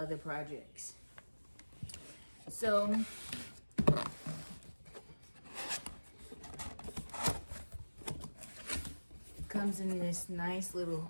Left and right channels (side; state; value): both; inverted; correlation -1.00